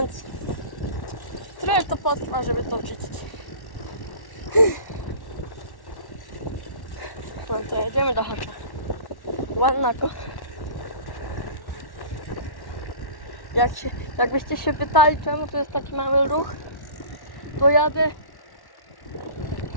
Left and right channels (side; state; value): right; late; 1.1 ms